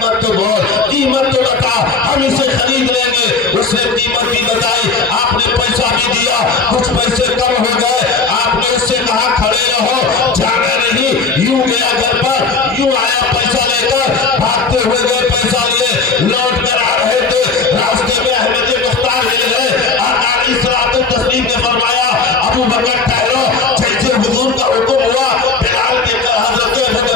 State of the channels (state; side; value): quieter; right; 4.5 dB